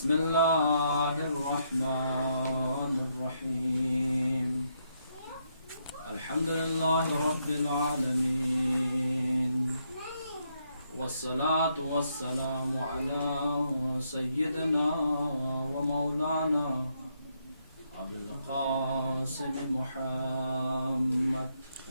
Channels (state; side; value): inverted; both; correlation -0.77